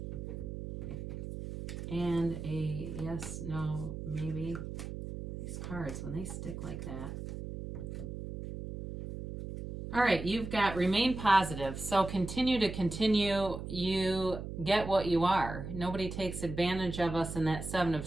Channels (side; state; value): right; noise; hum, 7 dB below the sound